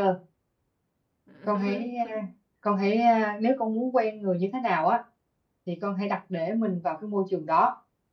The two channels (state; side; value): identical; both; correlation 1.00